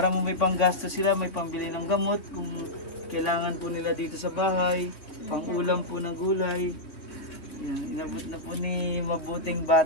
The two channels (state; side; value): late; right; 2.9 ms